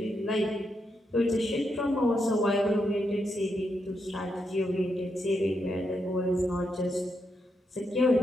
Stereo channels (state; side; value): normal; both; correlation 0.82